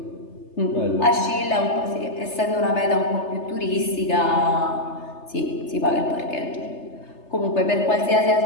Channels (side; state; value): right; late; 3.3 ms